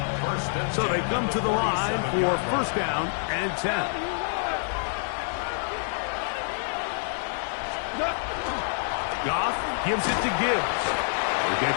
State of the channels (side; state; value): right; silent; digital silence